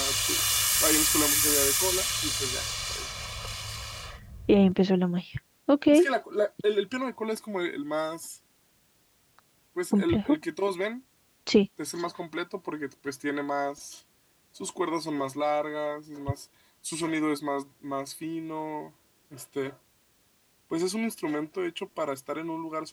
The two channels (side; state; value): both; identical; correlation 1.00